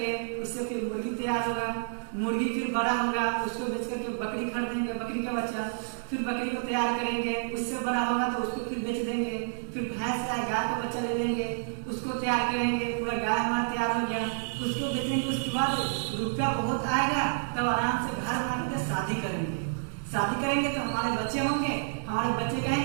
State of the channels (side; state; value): left; silent; 57 dB below the other